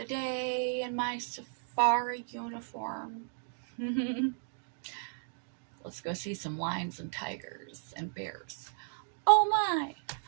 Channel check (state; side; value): silent; left; digital silence